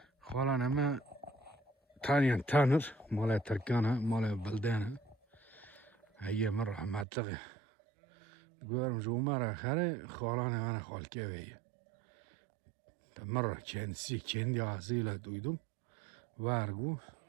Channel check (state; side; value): drops out; left; at 7.1 s